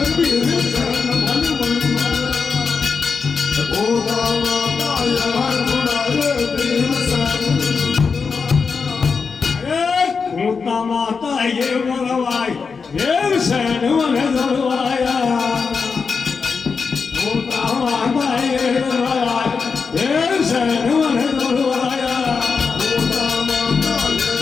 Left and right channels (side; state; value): right; quieter; 5.3 dB